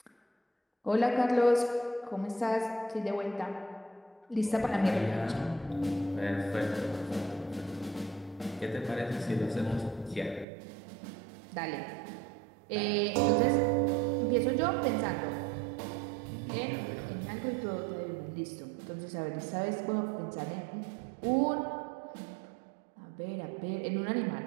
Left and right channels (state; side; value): drops out; left; at 10.5 s